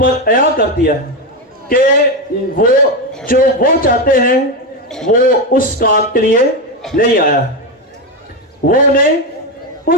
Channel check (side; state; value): both; normal; correlation 0.11